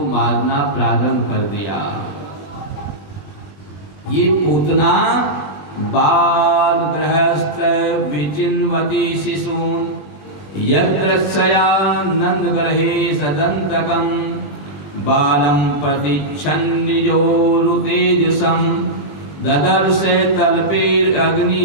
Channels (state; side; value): late; right; 20 ms